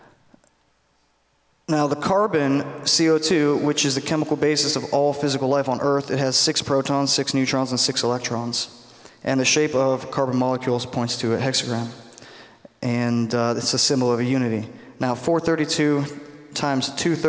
Now, the carbon, CO2, which is the chemical basis of all physical life on Earth, it has 6 protons, 6 neutrons, and 6 electrons. And the shape of carbon molecules points to a hexagram. And it's a symbol of a unity. Now, 432 times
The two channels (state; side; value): identical; both; correlation 1.00